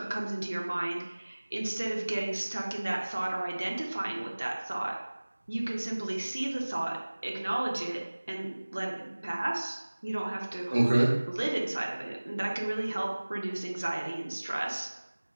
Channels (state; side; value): inverted; both; correlation -1.00